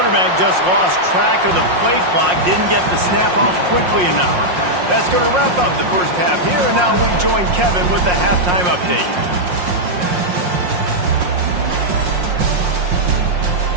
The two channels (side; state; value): left; late; 5.6 ms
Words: just lost track of the play clock, didn't get the snap off quickly enough. That's going to wrap up the first half here, and now we join Kevin with the halftime update.